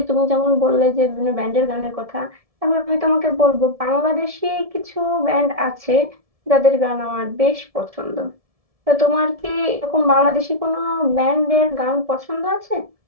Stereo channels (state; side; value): late; left; 1.7 ms